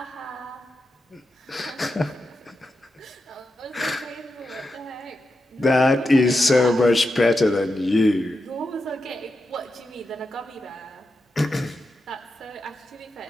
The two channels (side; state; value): both; normal; correlation 0.88